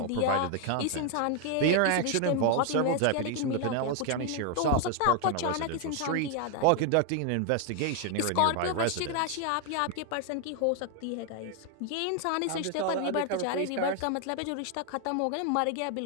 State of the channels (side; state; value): both; different; correlation 0.00